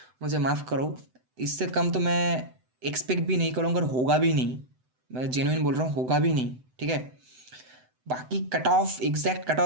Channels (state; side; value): late; left; 7.9 ms